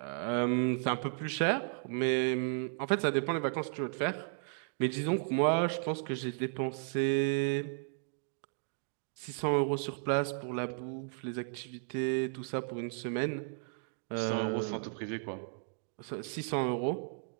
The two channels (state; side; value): silent; left; 55 dB below the other